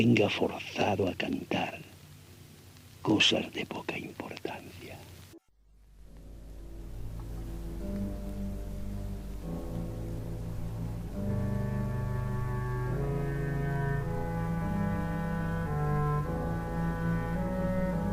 forzado a cantar cosas de poca importancia.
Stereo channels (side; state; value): both; identical; correlation 1.00